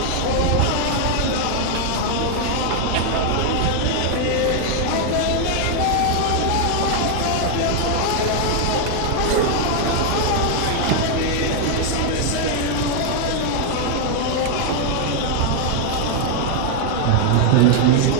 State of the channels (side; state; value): both; different; correlation 0.00